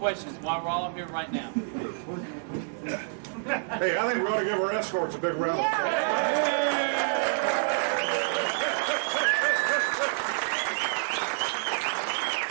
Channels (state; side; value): silent; left; digital silence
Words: while we're all here right now? Hey, I think we ought to give our escorts a big round of applause.